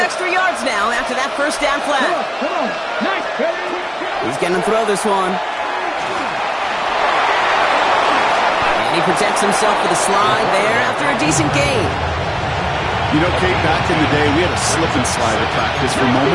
yards now after that first down flag. He's going to throw this one. And he protects himself with a slide there after a decent gain. You know, Kate, back in the day, we had a slip and slide at practice for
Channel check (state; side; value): identical; both; correlation 1.00